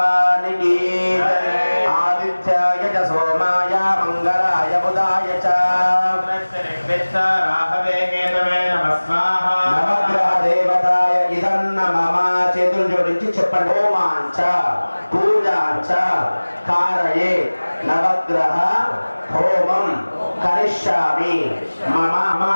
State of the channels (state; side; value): inverted; both; correlation -1.00